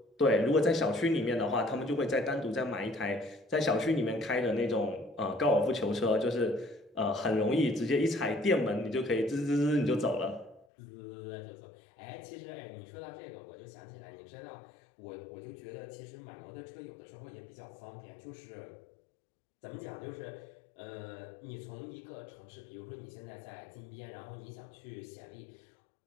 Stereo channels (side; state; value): right; drops out; at 10.7 s